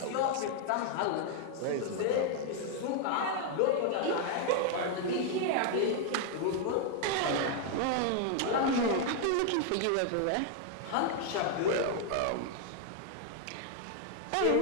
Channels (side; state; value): both; different; correlation 0.00